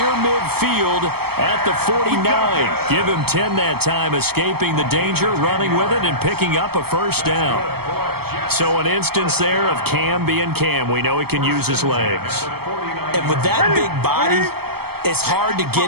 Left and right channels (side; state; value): left; late; 0.96 ms